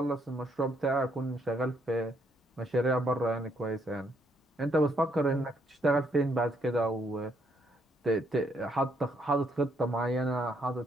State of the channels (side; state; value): both; normal; correlation 0.72